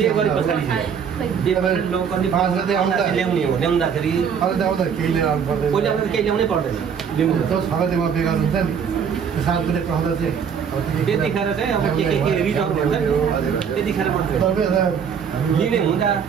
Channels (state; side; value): quieter; left; 7.2 dB